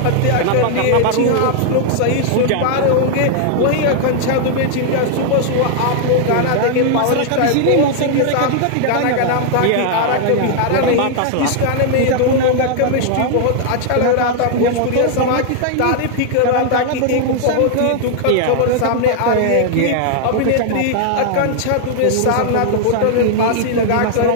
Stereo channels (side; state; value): both; different; correlation 0.00